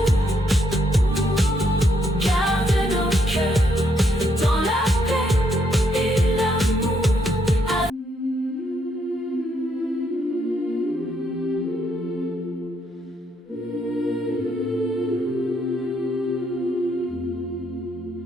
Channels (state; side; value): normal; both; correlation 0.74